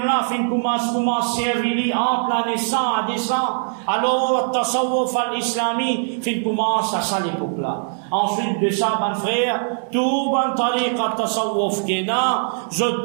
fin commence servir entre la naissance à descend. Alors, tasawwuf al-islami, fin commence à ça l'époque-là. Ensuite de ça, ban frère, tout ban tariqa tasawwuf qui est là, je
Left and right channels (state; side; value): silent; left; digital silence